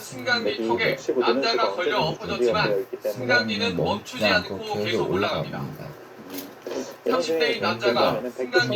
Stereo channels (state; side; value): identical; both; correlation 1.00